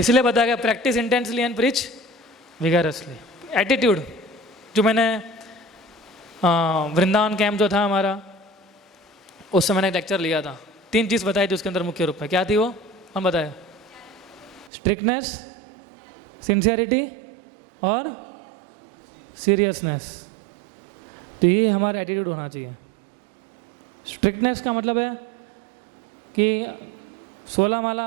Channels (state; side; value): drops out; left; at 14.7 s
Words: बताया गया practice intensely and preach vigorously. Attitude, जो मैंने वृंदावन कैंप जो था हमारा, उस समय मैंने एक लेक्चर लिया था, 3 चीज़ बताई थी उसके अंदर मुख्य रूप में। क्या थी वो? हम बताए, स्ट्रिक्टनेस, सिंसियरिटी और सीरियसनेस। तो ये हमारा एटीट्यूड होना चाहिए। स्ट्रिक्टनेस का मतलब है कि 16 माला